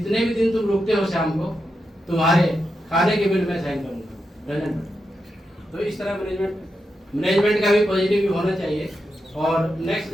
भी दिन तुम रुकते हो शाम को तुम्हारे खाने के बिल में साइन करूँगा रंजन। तो इस तरह मैनेजमेंट का भी पॉजिटिव होना चाहिए। और नेक्स्ट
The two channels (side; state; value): both; normal; correlation 0.87